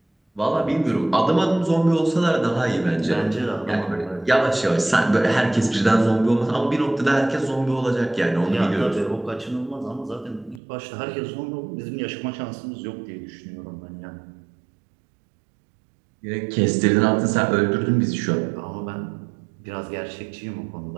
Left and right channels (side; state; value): left; drops out; at 10.6 s